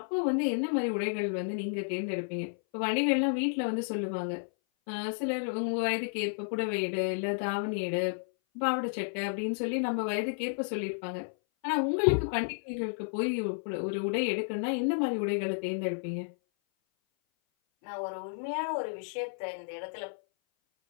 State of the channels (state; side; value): silent; right; 57 dB below the other